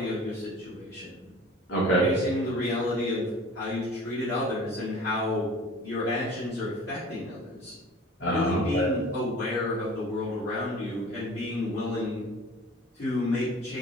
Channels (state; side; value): normal; both; correlation 0.44